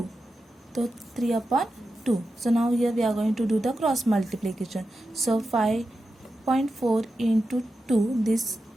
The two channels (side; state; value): both; normal; correlation 0.90